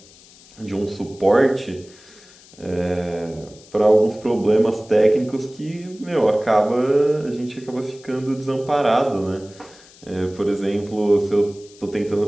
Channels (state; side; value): noise; left; hiss, 24 dB below the sound